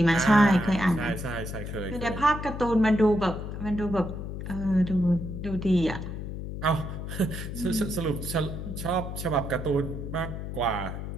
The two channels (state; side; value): noise; left; hum, 7 dB below the sound